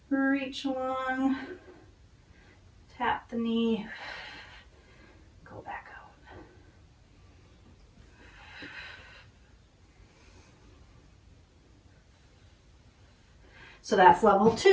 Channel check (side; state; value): both; identical; correlation 1.00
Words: reach long, tap the knee, go back out. So that's level